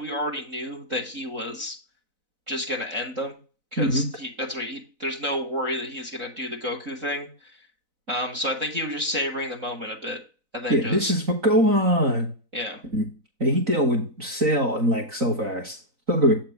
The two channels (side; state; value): left; late; 4.0 ms